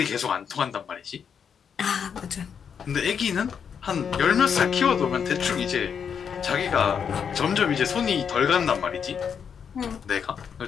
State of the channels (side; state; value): right; quieter; 7.2 dB